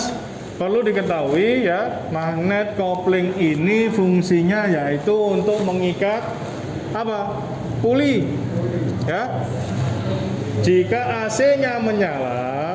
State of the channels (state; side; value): identical; both; correlation 1.00